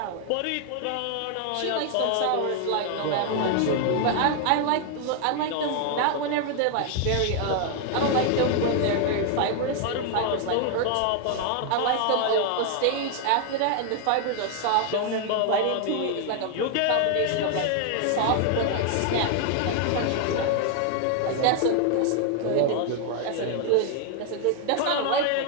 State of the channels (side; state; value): both; different; correlation 0.00